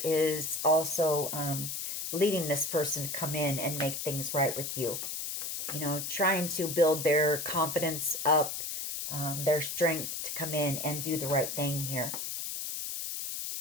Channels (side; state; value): left; noise; hiss, 4 dB below the sound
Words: is also leading this person to come in and make things right with you. You know, trying to build their confidence up, their strength to come in and do the right thing here.